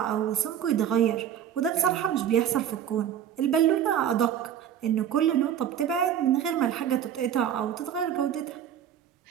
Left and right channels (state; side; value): quieter; left; 9.6 dB